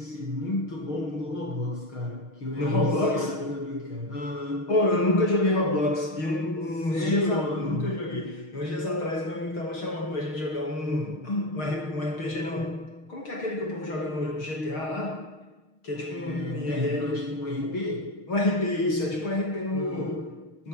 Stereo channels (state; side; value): late; right; 6.4 ms